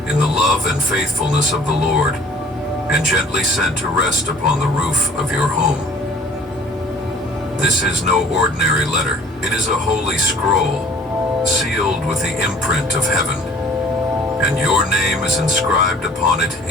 in the love and faithfulness of the Lord and gently sent to rest upon the roof of your home. This is no ordinary letter. It is a holy scroll, sealed with the imprint of heaven, and your name is inscribed upon it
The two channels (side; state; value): both; normal; correlation 0.51